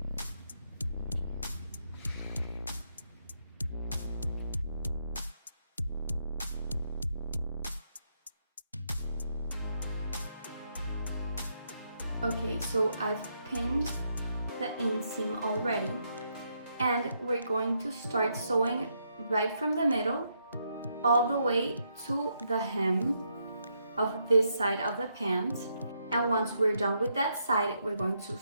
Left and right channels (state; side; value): inverted; both; correlation -0.78